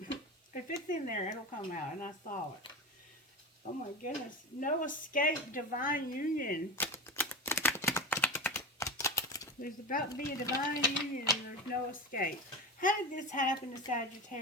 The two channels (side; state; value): both; normal; correlation 0.24